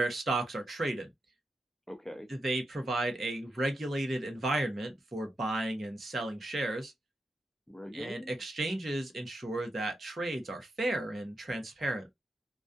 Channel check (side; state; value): both; normal; correlation 0.86